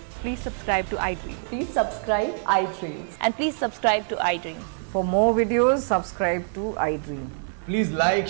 Please subscribe to iDream. Please subscribe iDream. And please subscribe to iDream. For more videos, subscribe to iDream. please like,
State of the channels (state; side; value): silent; left; 62 dB below the other